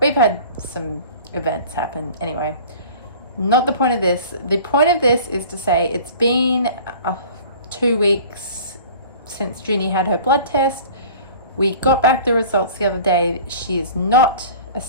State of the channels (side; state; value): both; inverted; correlation -0.43